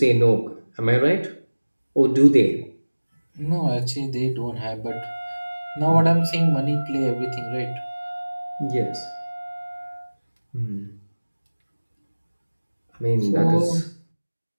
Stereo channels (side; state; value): both; inverted; correlation -1.00